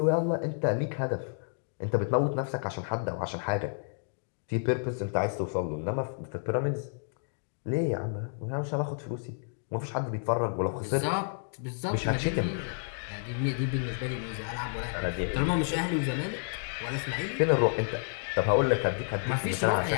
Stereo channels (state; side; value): silent; right; digital silence